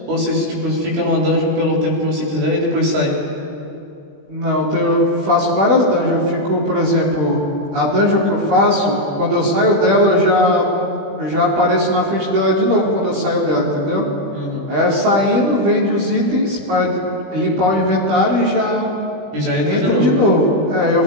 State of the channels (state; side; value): late; left; 20 ms